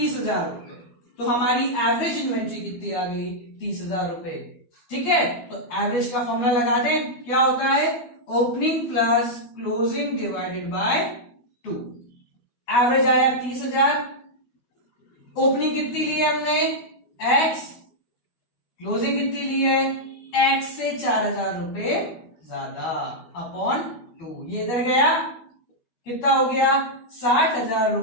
रुपए। तो हमारी एवरेज इन्वेंट्री कितनी आ गई? 30,000 रुपए। ठीक है, तो एवरेज का फॉर्मूला लगा दें, क्या होता है? Opening plus closing divided by 2। Average आया 30,000, ओपनिंग कितनी ली है हमने? x, क्लोजिंग कितनी ली है? x से 4,000 रुपए ज्यादा अपॉन 2। ये इधर गया, कितना हो गया? 60,000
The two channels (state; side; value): late; right; 12 ms